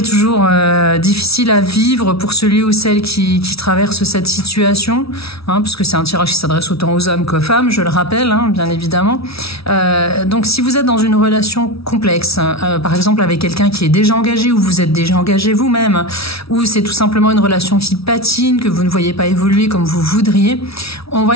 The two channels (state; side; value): late; right; 0.76 ms